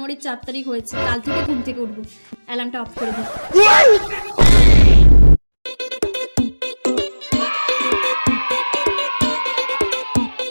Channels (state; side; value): inverted; both; correlation -1.00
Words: 4 তারিখ হয়েছে, কাল থেকে ঘুম থেকে উঠবো। অ্যালার্মটা অফ করে দিই।